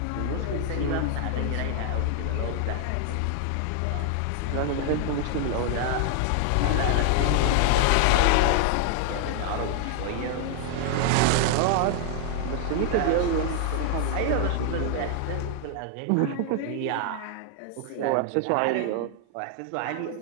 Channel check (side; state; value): both; different; correlation 0.00